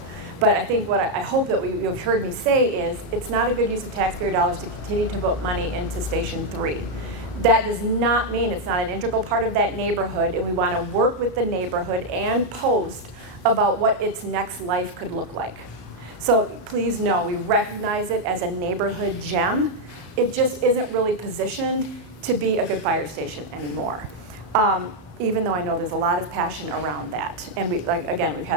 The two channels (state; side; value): normal; both; correlation 0.00